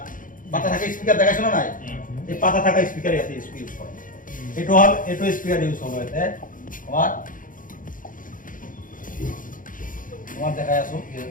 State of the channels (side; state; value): right; late; 0.39 ms